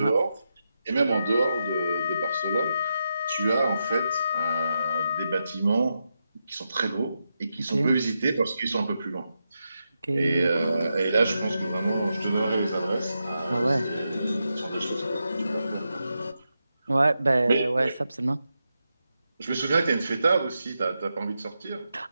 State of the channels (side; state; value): both; inverted; correlation -0.87